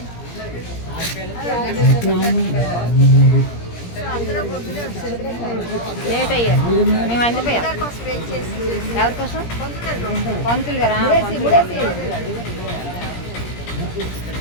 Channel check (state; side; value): late; right; 17 ms